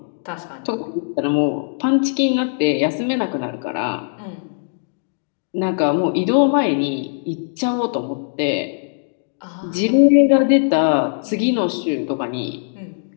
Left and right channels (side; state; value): right; silent; digital silence